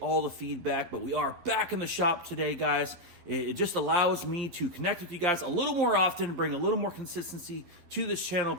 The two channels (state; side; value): late; left; 12 ms